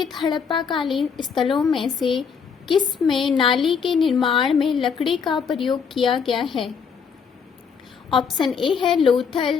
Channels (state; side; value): quieter; right; 6.3 dB